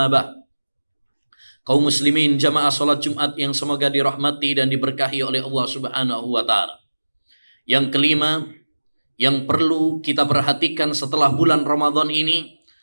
ba'd. Kaum muslimin jamaah salat Jumat yang semoga dirahmati dan diberkahi oleh Allah Subhanahu wa taala. Yang kelima, yang perlu kita perhatikan setelah bulan Ramadan ini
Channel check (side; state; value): both; inverted; correlation -1.00